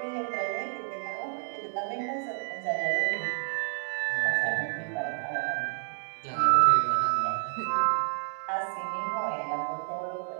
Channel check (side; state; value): left; silent; 57 dB below the other